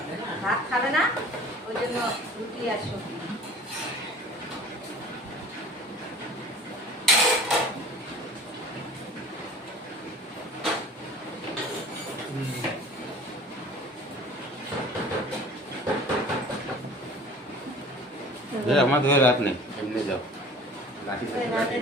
ভাত খাবে না, ওই জন্য রুটি আর সবজি। আমার ধরে রাত নেই, এমনি যাও লাঠি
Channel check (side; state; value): both; normal; correlation 0.44